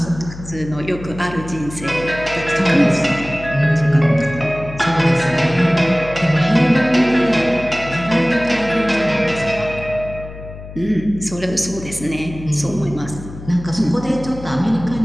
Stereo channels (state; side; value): noise; left; hum, 13 dB below the sound